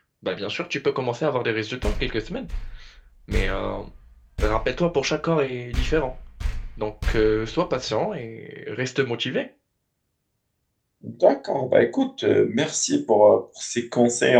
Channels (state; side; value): identical; both; correlation 1.00